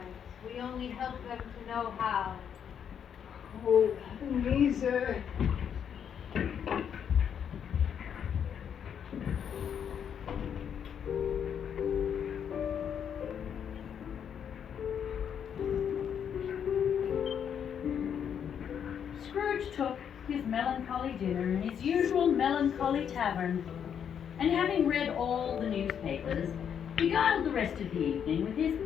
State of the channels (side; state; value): right; quieter; 8.2 dB